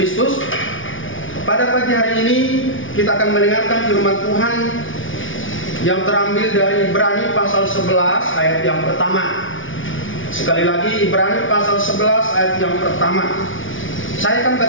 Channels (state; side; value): late; right; 0.57 ms